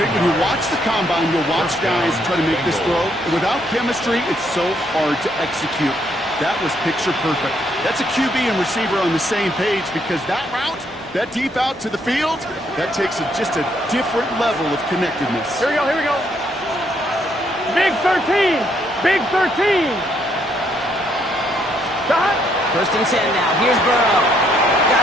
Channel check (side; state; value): both; normal; correlation 0.72